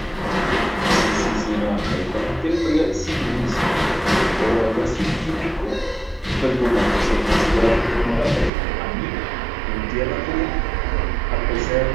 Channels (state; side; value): drops out; left; at 8.5 s